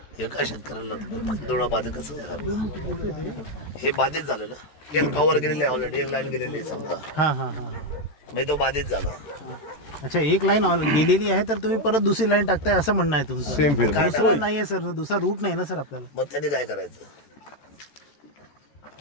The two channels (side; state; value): right; late; 13 ms